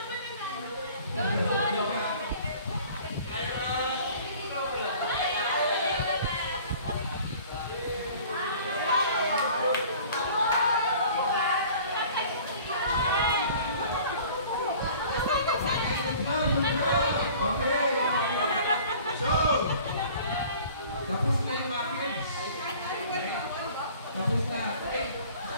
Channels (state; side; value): inverted; both; correlation -0.48